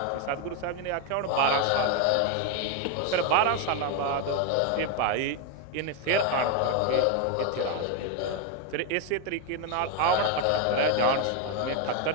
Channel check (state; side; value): different; both; correlation 0.02